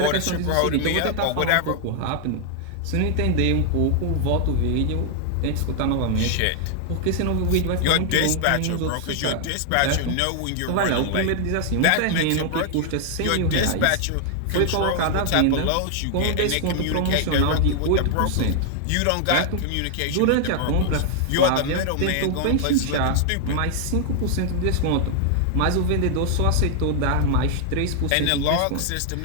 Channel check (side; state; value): both; different; correlation 0.00